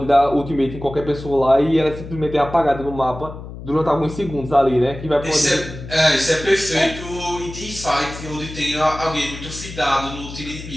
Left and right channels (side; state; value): left; noise; hum, 12 dB below the sound